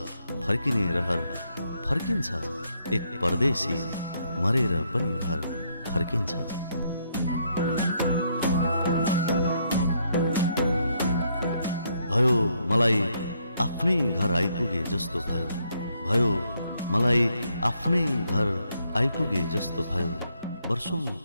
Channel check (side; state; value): both; inverted; correlation -0.74